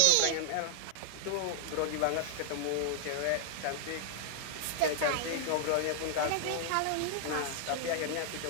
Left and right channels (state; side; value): different; both; correlation 0.00